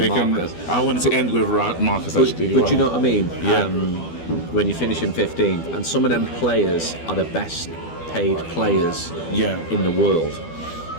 Marcus. I wanted to end with Marcus actually. But you know what I mean? When you finish in 15th, and some of them players are the best paid players in the world.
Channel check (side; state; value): right; late; 12 ms